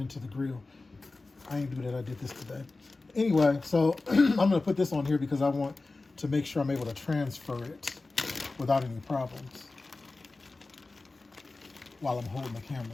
the grill. I ain't do that, I did this today. Anyway, so I'm gonna put this on here because I want to make sure I'm able to transfer it without any problems while I'm holding the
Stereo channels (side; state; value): right; quieter; 3.4 dB